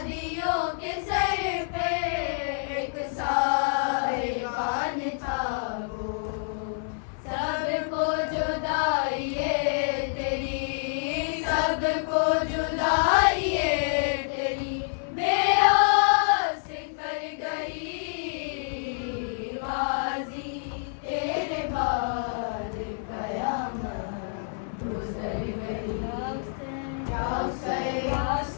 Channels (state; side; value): silent; right; 60 dB below the other